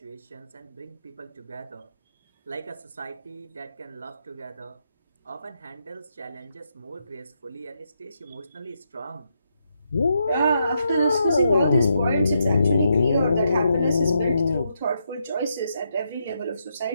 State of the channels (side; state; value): both; inverted; correlation -0.80